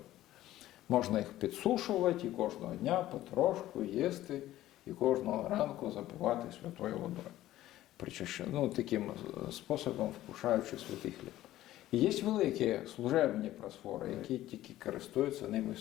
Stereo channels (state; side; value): quieter; right; 14.5 dB